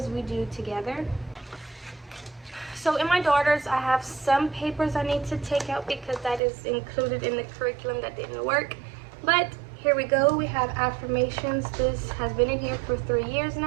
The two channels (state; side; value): drops out; left; at 6.4 s